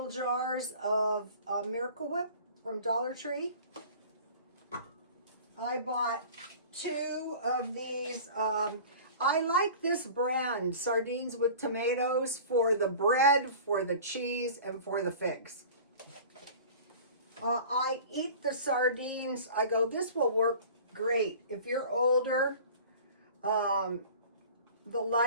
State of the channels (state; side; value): inverted; both; correlation -0.42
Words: jars of Miracle Whip from Dollar Tree. I bought 2 of these. I like this brand, Sardines with Tomatoes, for the bread, for the cheese, and for the figs. I eat the sardines. I go, this will work great. If you're older, the